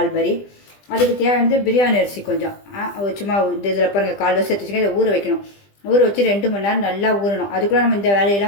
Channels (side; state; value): right; late; 20 ms